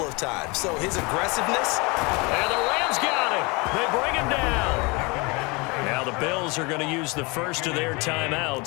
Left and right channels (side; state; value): right; quieter; 27.4 dB